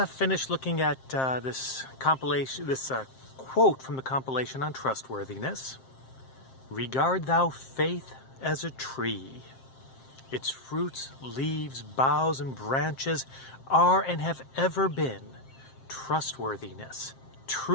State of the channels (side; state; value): right; late; 7.6 ms